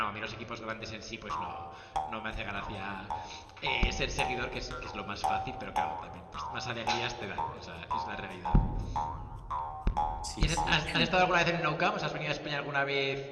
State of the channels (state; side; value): identical; both; correlation 1.00